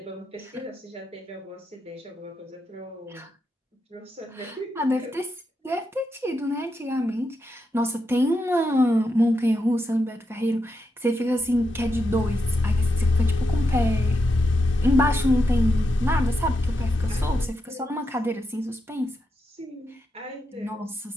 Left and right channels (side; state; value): both; normal; correlation 0.85